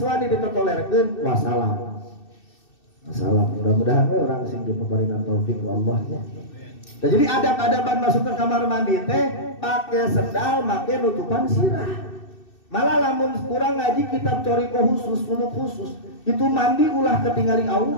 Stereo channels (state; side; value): late; right; 2.6 ms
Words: wani ditotolerkeun, wassalam. Mudah-mudahan we urang sing dipaparingan taufik ku Allah ya. Nah, jadi adab-adaban masuk ke kamar mandi teh pakai sendal, make nutupan sirah. Malah lamun kurang ngaji kitab coriko khusus, suluk khusus, itu mandi ulah ketinggali